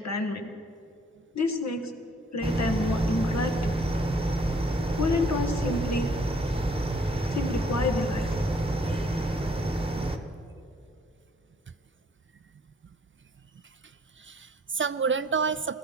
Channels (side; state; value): both; normal; correlation 0.62